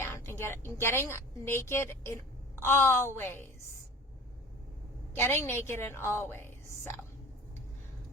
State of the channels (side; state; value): both; normal; correlation 0.40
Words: and getting naked in all ways. Getting naked in all ways. So